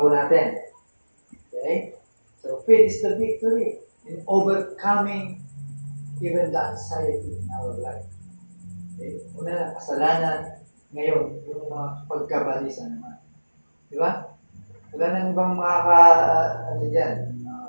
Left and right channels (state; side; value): inverted; both; correlation -1.00